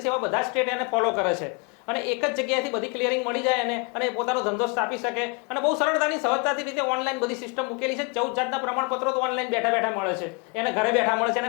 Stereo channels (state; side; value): quieter; right; 32.3 dB